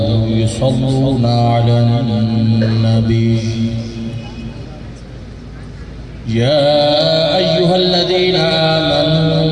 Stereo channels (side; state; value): both; identical; correlation 1.00